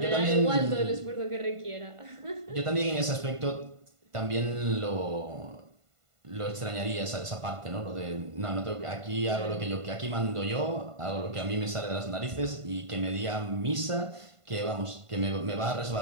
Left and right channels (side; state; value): left; late; 1.5 ms